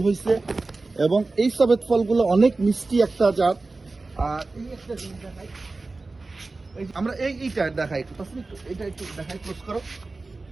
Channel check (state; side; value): quieter; left; 3.5 dB